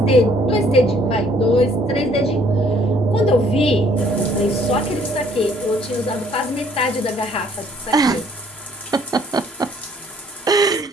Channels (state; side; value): normal; both; correlation 0.62